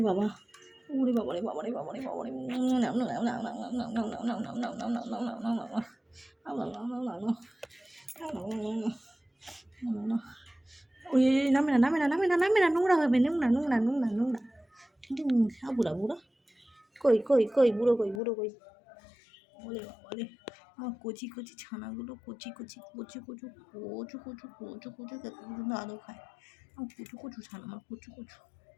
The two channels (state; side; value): drops out; right; at 18.2 s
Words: বাবা, ওরে বাবারে বাবারে বাবারে বাবারে, ওই নামে না নামে না নামে না নামে না, নোংরা হবে, নোংরা নোংরা নোংরা নোংরা। বুড়া বুড়া কই কই কই, বুড়ো কই, বুড়ো কই। ওরে বাবারে, আমার কচি কচি ছানাগুলো, কচি কচি কচু কচু কচু কচু কচু কচু কত পর্যন্ত আদৌ খায়। আমার কচু কচু ছানা, আমার কচু কচু।